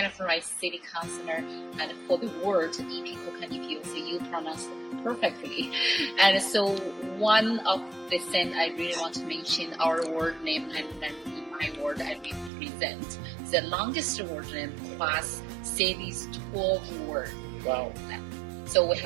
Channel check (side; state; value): left; drops out; at 12.5 s